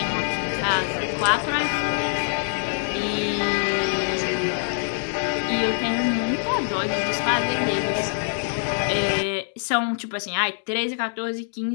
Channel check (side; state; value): right; silent; digital silence